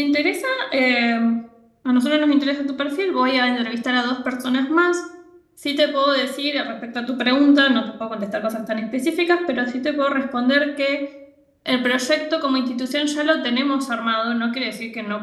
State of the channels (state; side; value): identical; both; correlation 1.00